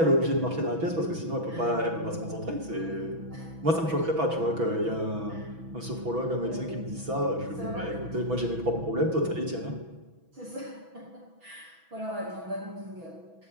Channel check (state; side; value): late; left; 6.1 ms